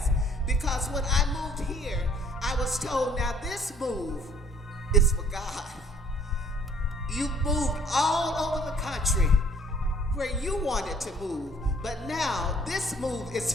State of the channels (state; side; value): normal; both; correlation 0.59